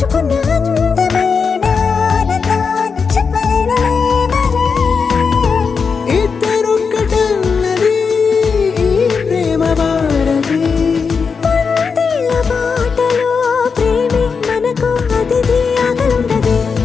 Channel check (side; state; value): right; quieter; 5.5 dB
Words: అందమైన ఆనందాన్ని చెప్పలేనులే మరి. ఇద్దరొక్కటన్నది ఈ ప్రేమ భారతి. వందేళ్ల బాటలో ప్రేమే మనకు అతిథి. ఆకలుండదే